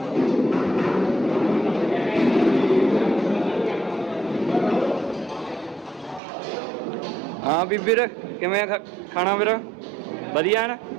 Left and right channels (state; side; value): drops out; left; at 6.2 s